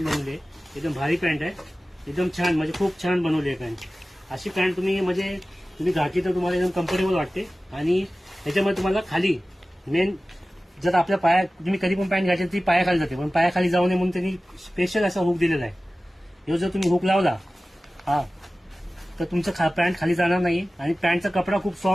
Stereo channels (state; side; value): normal; both; correlation 0.96